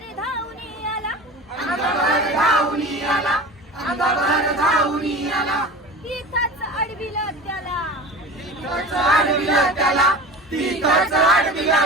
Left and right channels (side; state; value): both; normal; correlation 0.34